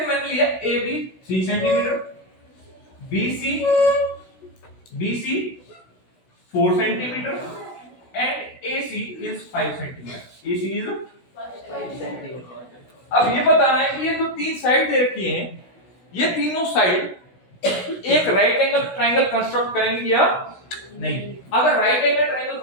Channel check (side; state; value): right; late; 16 ms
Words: मैंने लिया A B 3 centimetre, B C 4 centimetre and A C is 5 centimetre. A C is 5 centimetre. अब ये बताना है कि ये जो 3 साइड दे रखी हैं, ये तीनों साइड एक राइट एंगल ट्रायंगल कंस्ट्रक्ट करेंगी या नहीं? अगर राइट एंगल ट्रायंगल